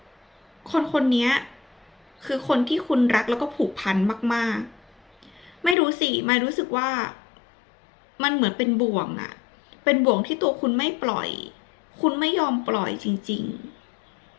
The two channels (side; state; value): right; drops out; at 5.8 s